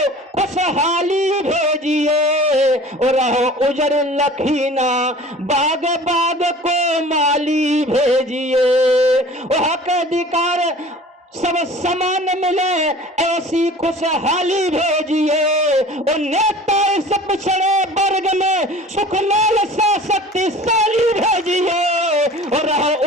खुशहाली भेजिए, और रहो उजर लखीना बाग बाग को माली भेजिए, और हक अधिकार सब समान मिले ऐसी खुशहाली भेजिए, और नेता इस पिछड़े वर्ग में सुख लाल सा शक्तिशाली भेजिए, और रहो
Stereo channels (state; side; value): normal; both; correlation 0.44